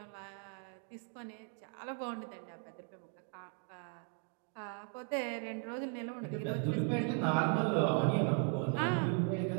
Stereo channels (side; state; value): left; quieter; 36.5 dB